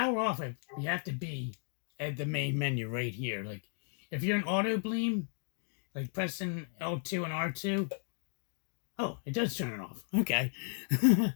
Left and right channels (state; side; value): silent; right; 55 dB below the other